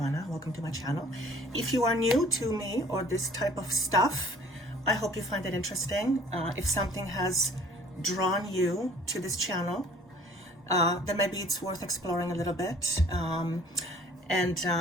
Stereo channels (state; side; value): normal; both; correlation 0.53